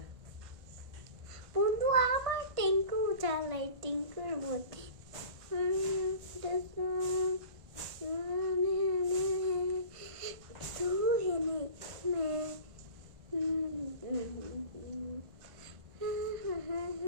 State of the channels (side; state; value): left; late; 1.5 ms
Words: বন্ধু আমার টিঙ্কু চালাই টিঙ্কুর মধ্যে तू है मैं